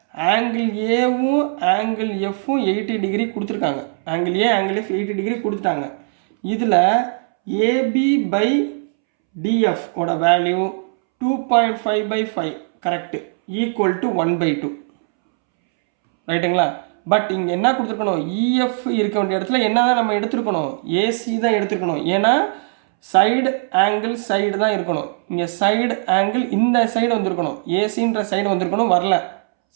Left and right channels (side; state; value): left; silent; 66 dB below the other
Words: ஆங்கிள் ஏவும் ஆங்கிள் எஃப்பும் 80 டிகிரி கொடுத்துருக்காங்க. ஆங்கிள் ஏ ஆங்கிள் எஃப் 80 டிகிரி கொடுத்துட்டாங்க. இதில் AB/DF ஓட வேல்யூ 2.5/5 கரெக்டு, ஈக்குவல் டு 1/2. ரைட்டுங்களா? பட் இங்கே என்ன கொடுத்துருக்கணும்? EF இருக்க வேண்டிய இடத்துல என்ன தான் நம்ம எடுத்துருக்கணும்? AC தான் எடுத்துருக்கணும். ஏன்னா சைடு ஆங்கிள் சைடு தான் இருக்கணும். இங்கே சைடு ஆங்கிள் இந்த சைடு வந்திருக்கணும், ஏசின்ற சைடு வந்திருக்கணும், வரல.